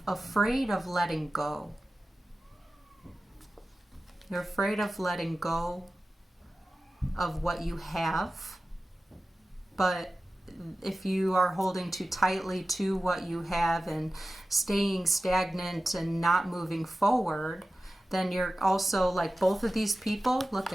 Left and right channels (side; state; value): both; normal; correlation 0.95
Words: afraid of letting go. You're afraid of letting go of what you have, but if you are holding too tightly to what you have and staying stagnant and not moving forward, then you're also like both of these people. Look